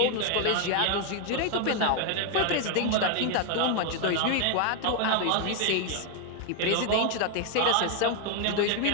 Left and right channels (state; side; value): different; both; correlation 0.01